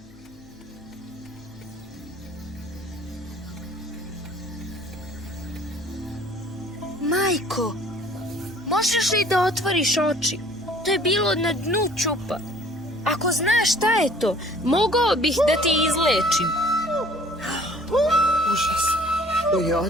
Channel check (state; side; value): noise; left; hum, 25 dB below the sound